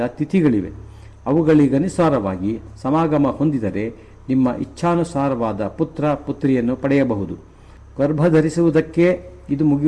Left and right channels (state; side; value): identical; both; correlation 1.00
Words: ತಿಥಿಗಳಿವೆ. ಅವುಗಳಿಗನುಸಾರವಾಗಿ ಸಮಾಗಮ ಹೊಂದಿದರೆ ನಿಮ್ಮ ಇಚ್ಛಾನುಸಾರವಾದ ಪುತ್ರ ಪುತ್ರಿಯನ್ನು ಪಡೆಯಬಹುದು. ಗರ್ಭಧರಿಸುವುದಕ್ಕೆ ಇದು